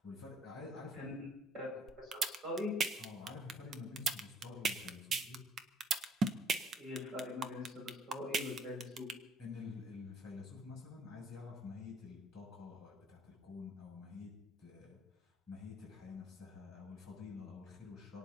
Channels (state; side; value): normal; both; correlation 0.60